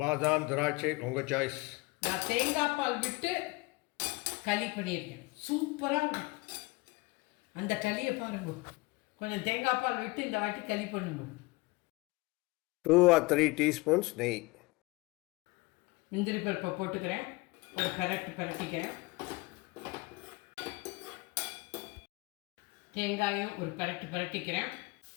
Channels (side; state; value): right; quieter; 24.1 dB